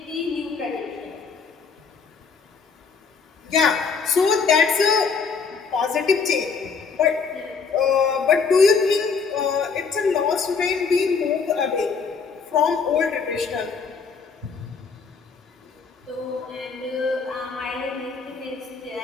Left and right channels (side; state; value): right; quieter; 5.4 dB